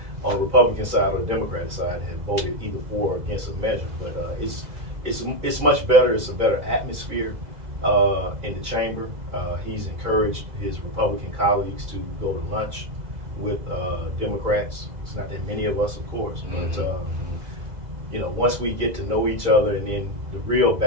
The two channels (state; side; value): late; left; 2.0 ms